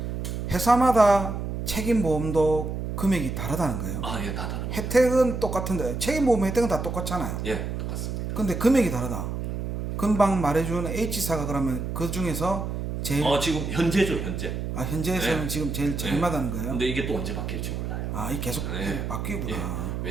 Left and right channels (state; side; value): noise; right; hum, 4 dB below the sound